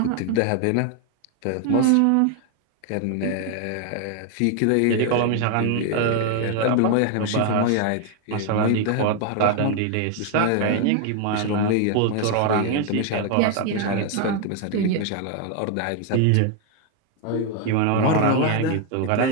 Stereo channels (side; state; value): both; different; correlation 0.00